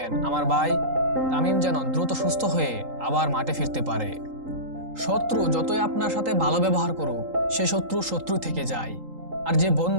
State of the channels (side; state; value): left; late; 3.8 ms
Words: আমার ভাই তামিম যেন দ্রুত সুস্থ হয়ে আবার মাঠে ফিরতে পারে। শত্রু যতই আপনার সাথে ভালো ব্যবহার করুক, সে শত্রু শত্রু থেকে যায়। আর যে